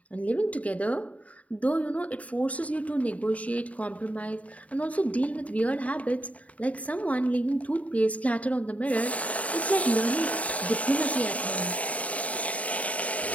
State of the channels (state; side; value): late; right; 0.068 ms